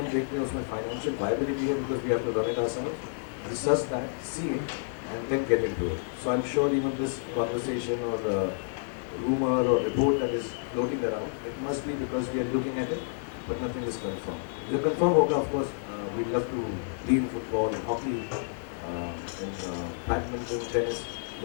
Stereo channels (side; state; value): right; silent; 58 dB below the other